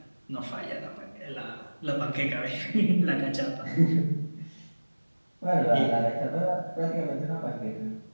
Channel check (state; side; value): inverted; both; correlation -1.00